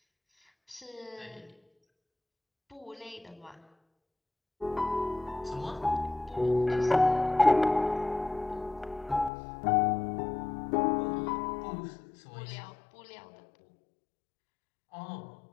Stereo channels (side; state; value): right; drops out; at 9.3 s